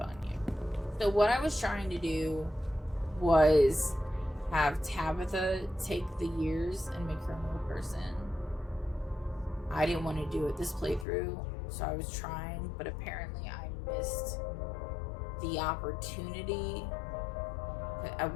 you. So what I was trying to do was have Tabitha take the years and make her a real person. I didn't want to do it this playthrough, so I was trying, but apparently I missed the opportunity. At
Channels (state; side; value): drops out; right; at 11.1 s